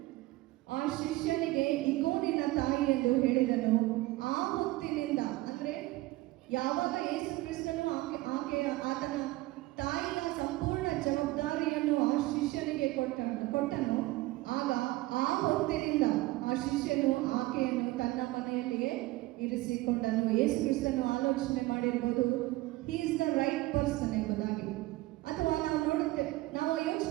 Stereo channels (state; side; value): quieter; left; 19.1 dB